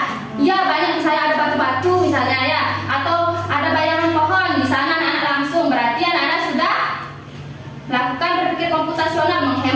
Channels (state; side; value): identical; both; correlation 1.00